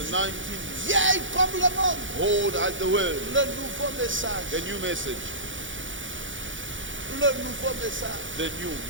19th, Vieille comme le monde. old as the world. Le nouveau message. The new message, Le nouveau message. the new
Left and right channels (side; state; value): left; late; 0.56 ms